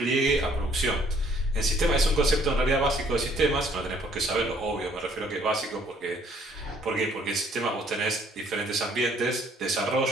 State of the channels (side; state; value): both; normal; correlation 0.62